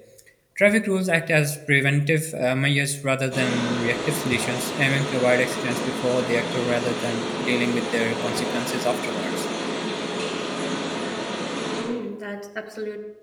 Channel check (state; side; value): identical; both; correlation 1.00